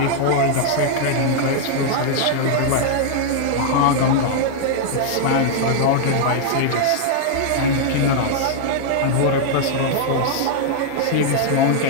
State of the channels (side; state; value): both; different; correlation -0.01